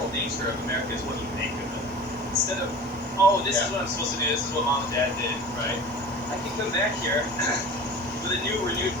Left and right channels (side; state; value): both; normal; correlation 0.37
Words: nature of America is what you make of it. Instead of, oh, this is what I'm supposed to do, this is what mom and dad did, right? I can come back here with a new, renewed